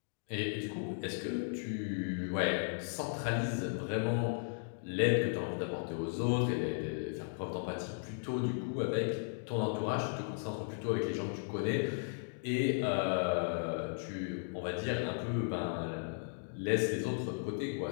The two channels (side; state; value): right; silent; digital silence